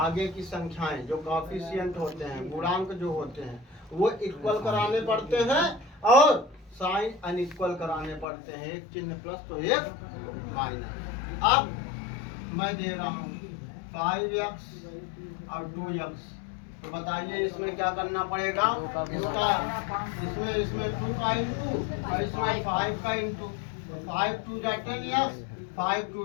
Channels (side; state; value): right; drops out; at 8.2 s